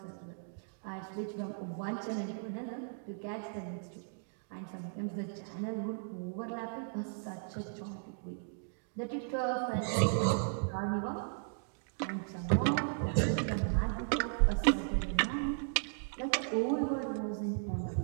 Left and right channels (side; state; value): left; silent; digital silence